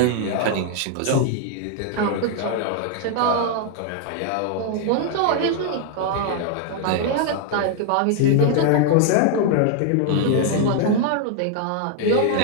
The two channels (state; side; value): different; both; correlation 0.00